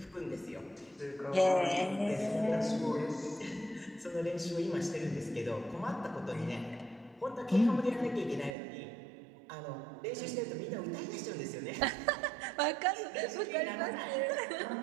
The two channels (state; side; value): drops out; left; at 8.5 s